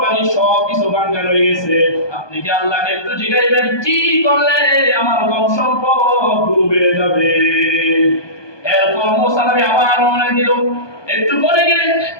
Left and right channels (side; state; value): right; late; 1.2 ms